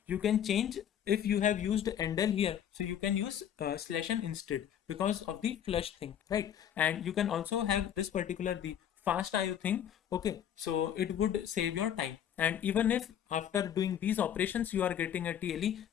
you can change, if you have used endl here, so you can use /n instead because of the flush thing, right? And you can also have this particular the fast IO thing. Okay, so it would save your time, and even if after doing these operations you are getting a TLE,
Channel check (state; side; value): quieter; right; 9.6 dB